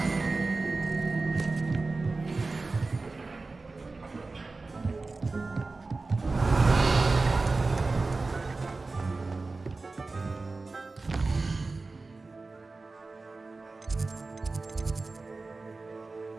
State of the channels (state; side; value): quieter; left; 3.6 dB